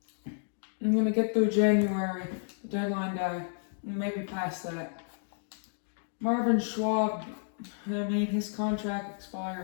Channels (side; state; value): right; silent; digital silence